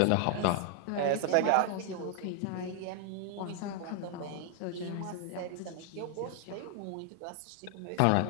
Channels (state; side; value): different; both; correlation 0.00